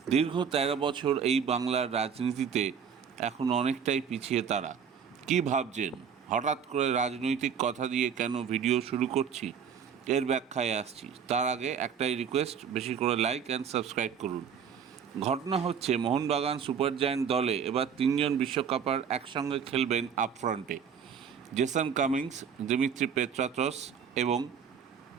দীর্ঘ ১৩ বছর এই বাংলার রাজনীতিতে এখন অনেকটাই পিছিয়ে তারা। কি ভাবছেন? হঠাৎ করে রাজনৈতিক কথা দিয়ে কেন ভিডিও শুরু করছি, এর ব্যাখ্যায় আসছি। তার আগে একটাই রিকোয়েস্ট, বেশি করে লাইক অ্যান্ড সাবস্ক্রাইব করুন। ঘটনা হচ্ছে, মোহনবাগান সুপার জায়ান্ট দলে এবার ৩ বিশ্বকাপার একসঙ্গে খেলবেন আপফ্রন্টে। জেসন কামিংস, দিমিত্রি পেত্রাতস এবং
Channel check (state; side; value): quieter; left; 7.2 dB